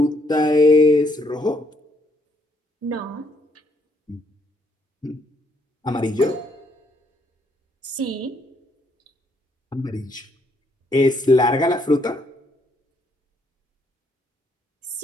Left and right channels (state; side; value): normal; both; correlation 0.72